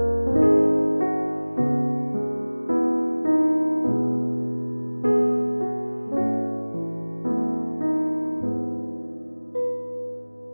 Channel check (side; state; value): both; inverted; correlation -1.00